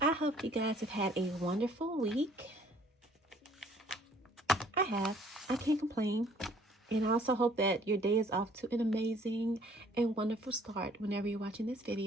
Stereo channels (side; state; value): both; normal; correlation 0.59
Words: I hope you guys have had a wonderful week. I have. I can't complain. And I also hope that your day is off to an amazing and wonderful start whenever you're watching this